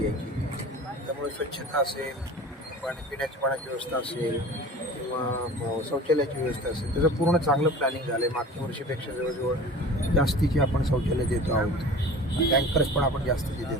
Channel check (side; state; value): both; normal; correlation 0.40